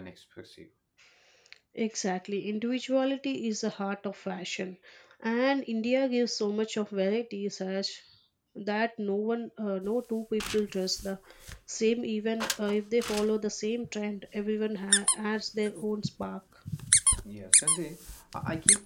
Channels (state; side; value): identical; both; correlation 1.00